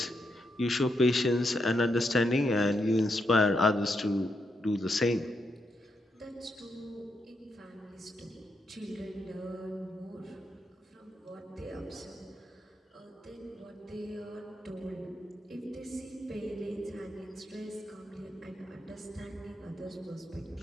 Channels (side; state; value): both; normal; correlation 0.81